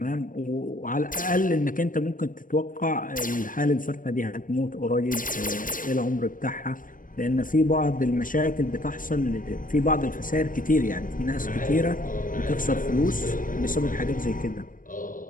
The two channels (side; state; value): right; late; 0.39 ms